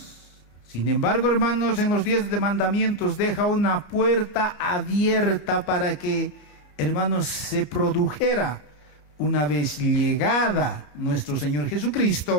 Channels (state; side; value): late; right; 15 ms